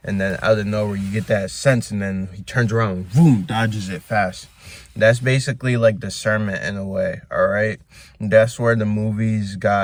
and then out of nowhere you get that sense, and then he turns around, boom, dodges it fast. That's basically like discernment in a way, all right? That's where the movies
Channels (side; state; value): both; identical; correlation 1.00